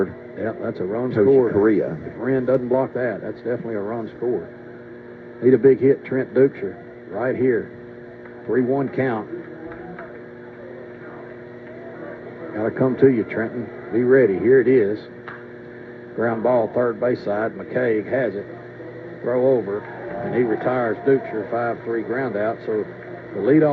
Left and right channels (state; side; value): identical; both; correlation 1.00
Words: Yeah, that's a run Coach scored. Correa. If Wren doesn't block that, that's definitely a run scored. Need a big hit, Trent Duxer, right here. 3-1 count. Gotta come to you, Trenton. Be ready. Here it is. Ground ball, third base side. McCaig has it. Throw over, and he retires Duxer, 5-3 ground out. So the